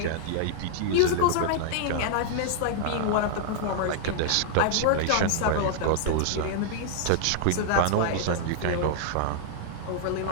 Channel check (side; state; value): both; different; correlation -0.01